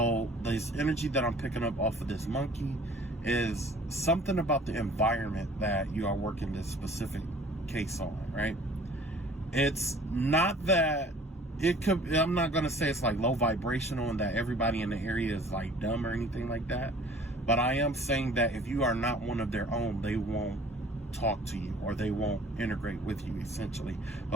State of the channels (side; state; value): both; normal; correlation 0.50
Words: this energy that I'm picking up off of this monkey is something about the environment that you are working this specific case on, right? It's not that I'm not going to say it's like low vibrational and that everybody in the area is like dumb or anything like that. But I am saying that if you are not one of their own, they won't talk to you or they won't integrate with you, essentially.